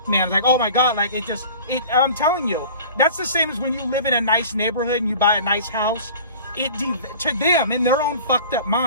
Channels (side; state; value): both; inverted; correlation -0.42